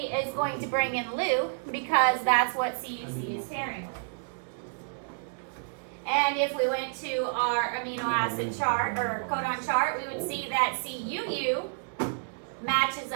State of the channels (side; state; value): left; silent; digital silence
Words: is going to bring in LU because that's what CUC is pairing with. And if we went to our amino acid chart or codon chart, we would see that CUU matches